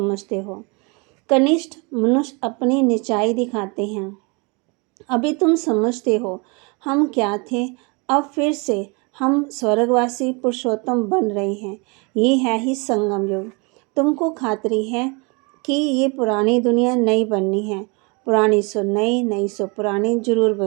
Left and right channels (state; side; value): quieter; left; 30.5 dB